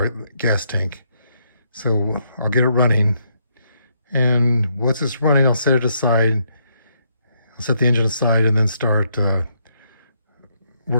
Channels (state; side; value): inverted; both; correlation -0.76